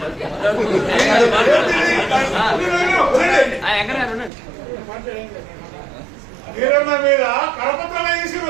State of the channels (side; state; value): left; drops out; at 4.3 s